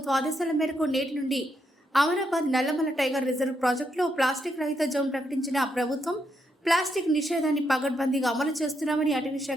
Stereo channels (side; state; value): both; normal; correlation 0.79